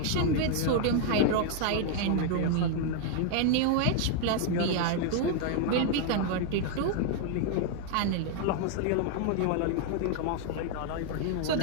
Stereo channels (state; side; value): different; both; correlation 0.00